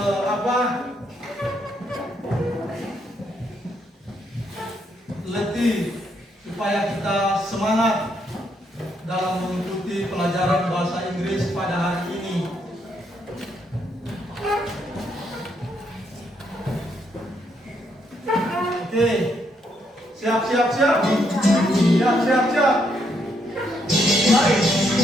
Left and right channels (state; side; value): normal; both; correlation 0.75